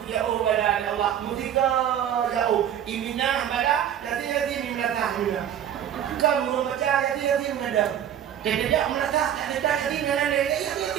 ubala ya Allah. Mutika jauh. Iminah bala, jadi ni belakang. Kalau baca jadi mengadap. Jadi dia melata, tak jadi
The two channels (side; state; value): left; quieter; 10.0 dB